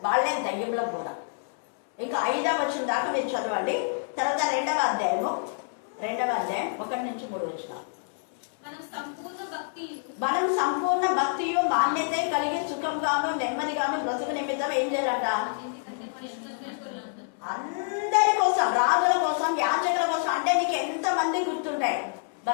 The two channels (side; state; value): right; silent; 60 dB below the other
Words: వాళ్ళే దయ్యంలో బోధ. ఇంకా 5వ వచనం దాకా మీరు చదవండి. తర్వాత 2వ అధ్యాయం 1 నుంచి 3 వచనాలు. మనం సంపూర్ణ భక్తియు మాన్యత కలిగి సుఖంగాను నెమ్మదిగాను బ్రతుకు నిమిత్తం ఏం చేయాలంట? అందరి కోసం, రాజుల కోసం, యాజకుల కోసం. అంటే నీకు ఎంతమంది గుర్తుంటాయి?